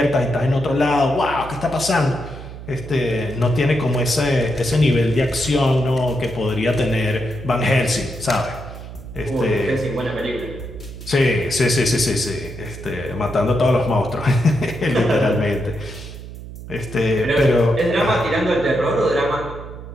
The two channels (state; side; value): noise; right; hum, 12 dB below the sound